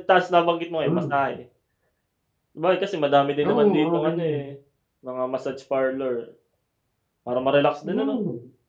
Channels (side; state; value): both; identical; correlation 1.00